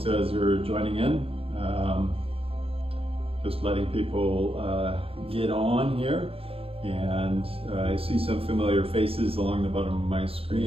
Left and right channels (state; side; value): late; left; 0.27 ms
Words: as you're joining in, just letting people get on here, and I see some familiar faces along the bottom of my